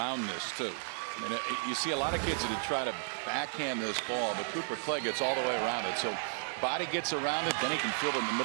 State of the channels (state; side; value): silent; left; digital silence